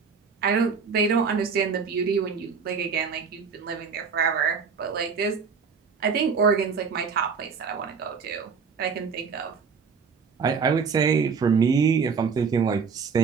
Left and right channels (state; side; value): quieter; left; 5.7 dB